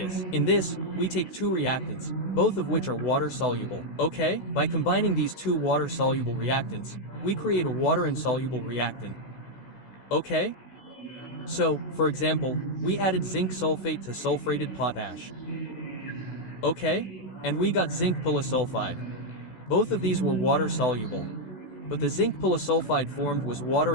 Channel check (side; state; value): right; late; 16 ms